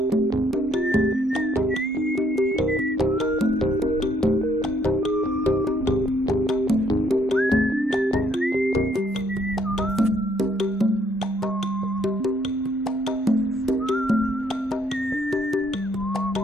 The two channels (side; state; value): both; normal; correlation 0.67